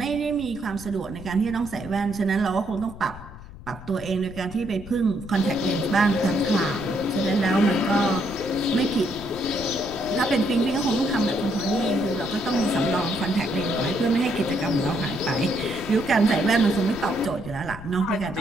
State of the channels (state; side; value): noise; left; rumble, 16 dB below the sound